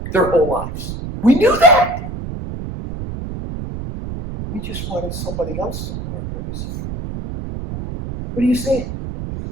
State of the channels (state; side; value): noise; right; rumble, 7 dB below the sound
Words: their whole lives. We knew that. We just wanted somebody else to love our boys. What are you saying?